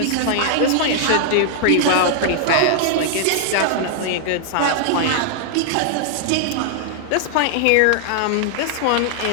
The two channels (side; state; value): both; different; correlation -0.01